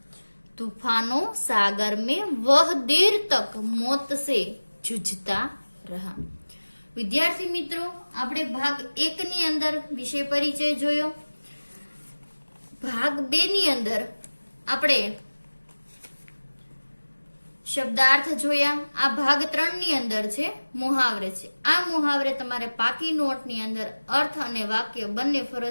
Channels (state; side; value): inverted; both; correlation -1.00